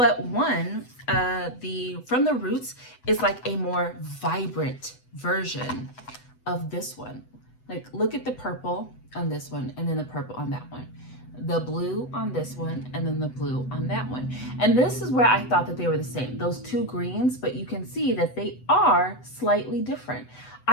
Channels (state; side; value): late; right; 8.0 ms